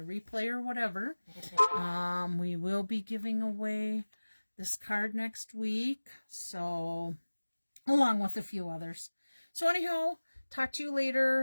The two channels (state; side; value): inverted; both; correlation -1.00